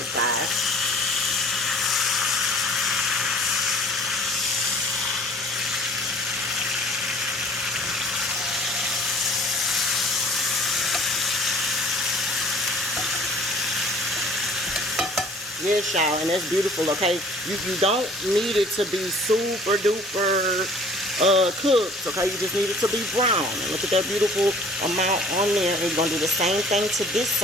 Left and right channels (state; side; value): normal; both; correlation 0.51